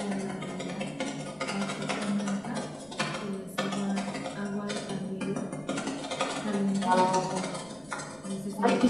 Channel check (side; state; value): right; noise; rumble, 28 dB below the sound